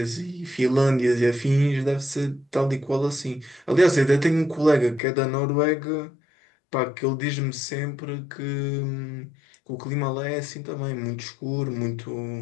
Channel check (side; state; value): right; drops out; at 5.0 s